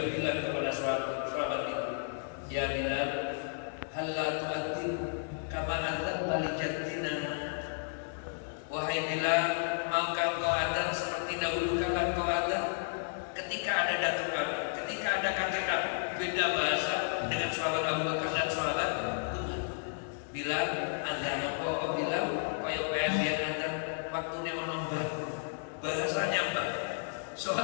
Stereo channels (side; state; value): right; silent; digital silence